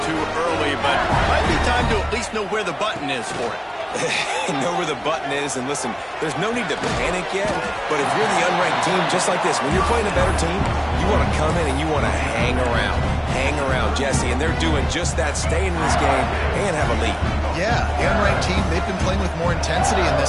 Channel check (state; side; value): identical; both; correlation 1.00